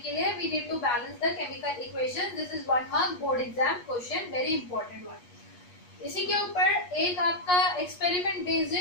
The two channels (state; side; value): late; right; 8.3 ms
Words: लिए we need to balance the chemical equation. This is 1 mark board exam question, very important one. इसी के ऊपर एक आपका एक्सपेरिमेंट बेस्ड